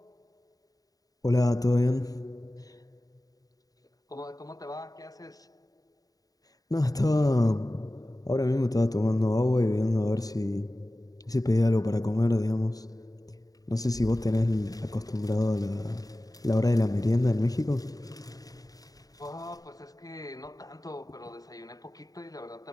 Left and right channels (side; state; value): right; late; 0.18 ms